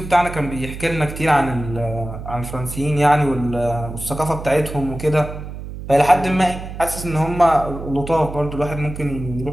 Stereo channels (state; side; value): noise; right; hum, 10 dB below the sound